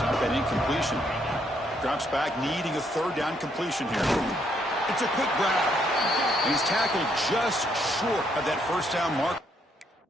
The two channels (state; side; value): normal; both; correlation 0.72